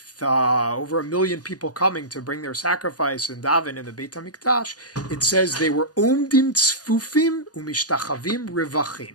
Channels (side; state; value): right; late; 0.68 ms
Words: over 1 million people coming to bring their sacrifice and daven in the Beit Hamikdash, it says they were omdim tzfufim umishtachavim